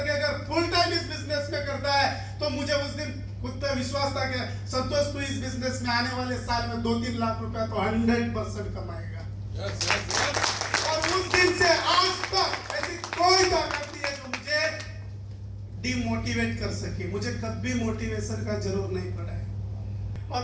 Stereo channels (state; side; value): identical; both; correlation 1.00